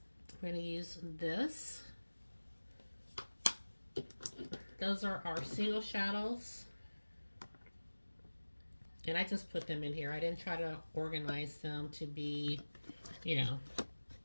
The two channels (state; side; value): inverted; both; correlation -1.00